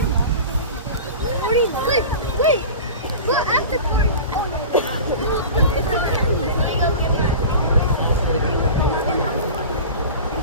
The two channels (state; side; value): inverted; both; correlation -0.34